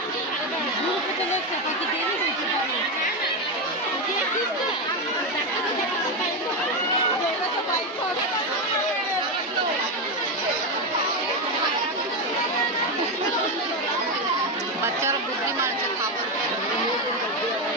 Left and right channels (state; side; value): normal; both; correlation 0.10